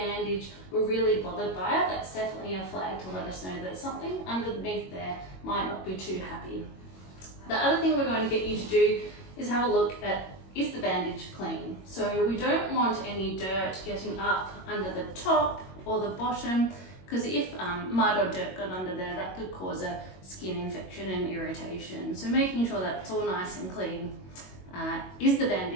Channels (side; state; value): right; late; 22 ms